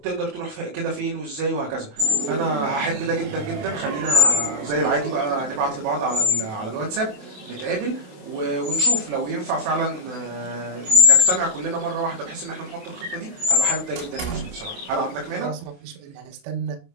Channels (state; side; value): late; left; 28 ms